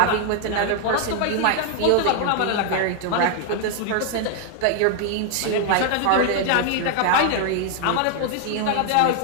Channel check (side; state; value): both; different; correlation 0.00